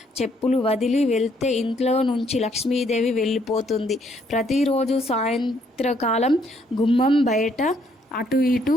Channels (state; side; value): normal; both; correlation 0.69